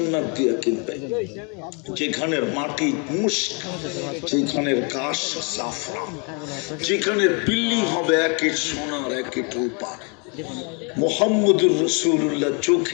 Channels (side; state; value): right; quieter; 33.6 dB